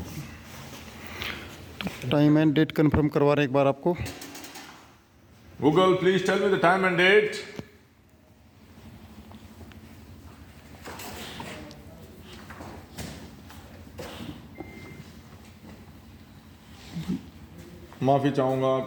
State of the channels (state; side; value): identical; both; correlation 1.00